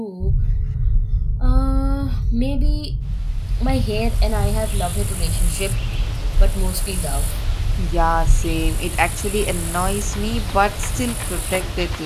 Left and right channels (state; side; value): identical; both; correlation 1.00